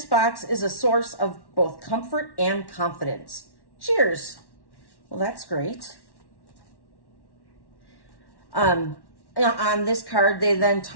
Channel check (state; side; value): late; right; 1.1 ms